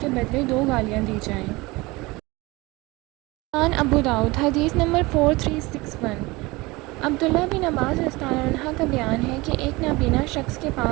بدلے 2 گالیاں دی جائیں۔ سنن ابو داؤد حدیث نمبر 4361۔ عبداللہ بن عباس رضی اللہ عنہ کا بیان ہے کہ ایک نابینا شخص کے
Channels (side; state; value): left; quieter; 22.6 dB